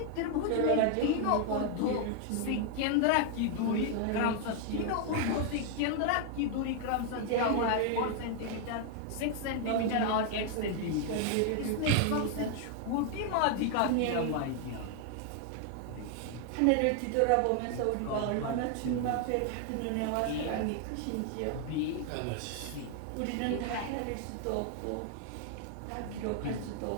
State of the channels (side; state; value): both; different; correlation 0.00